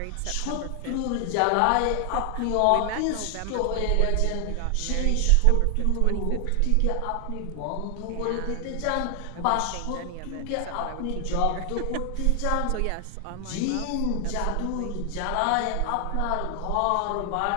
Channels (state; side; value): different; both; correlation 0.00